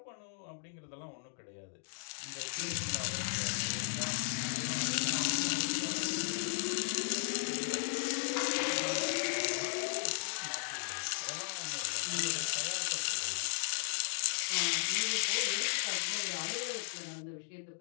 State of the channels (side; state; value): right; silent; digital silence